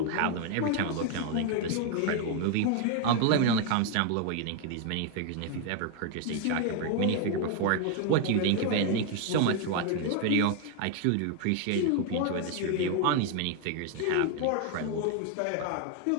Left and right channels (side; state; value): both; different; correlation 0.01